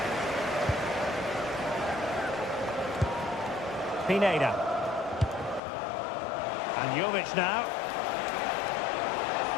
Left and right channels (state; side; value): drops out; right; at 5.6 s